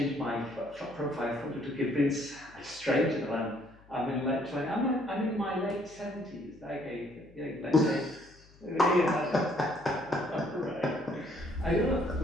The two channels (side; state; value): left; noise; hum, 26 dB below the sound